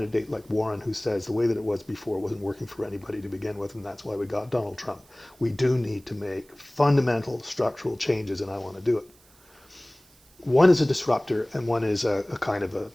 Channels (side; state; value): right; noise; hiss, 29 dB below the sound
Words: like Warren who says the way that it was before wasn't working for anybody to begin with, and that's why we got Donald Trump? We do need to make fundamental structural changes, and I want to do it. One is a disruptor, and one is a kind of a,